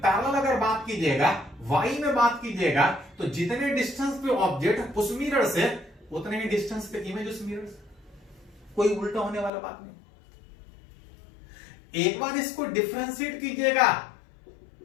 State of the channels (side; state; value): right; drops out; at 9.5 s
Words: अगर बात कीजिएगा, वाई में बात कीजिएगा, तो जितने डिस्टेंस पे ऑब्जेक्ट उस मिरर से, उतने ही डिस्टेंस पे इमेज उस मिरर से। कोई उल्टा होने वाला बात नहीं। एक बार इसको डिफरेंशिएट कीजिएगा,